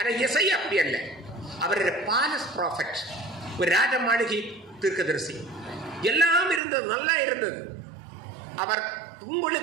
எசையா அப்படி அல்ல. அவர் பாலஸ் ப்ராஃபட், ஒரு ராஜ மாளிகை தீர்க்கதரிசி. எல்லாம் இருந்தது, நல்லா இருந்தது. அவர்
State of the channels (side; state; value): left; drops out; at 6.6 s